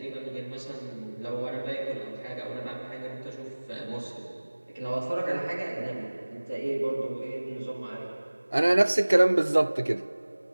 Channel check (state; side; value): inverted; both; correlation -1.00